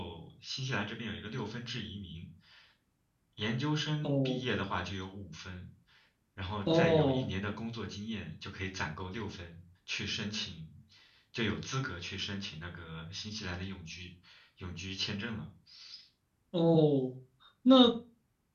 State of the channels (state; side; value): identical; both; correlation 1.00